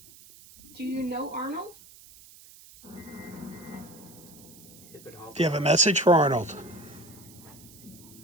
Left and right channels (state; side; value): noise; right; hiss, 21 dB below the sound